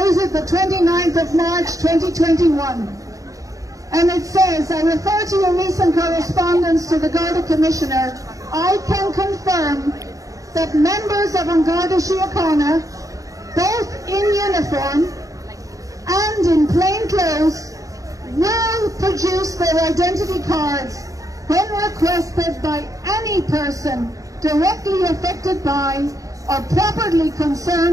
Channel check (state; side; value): late; left; 0.16 ms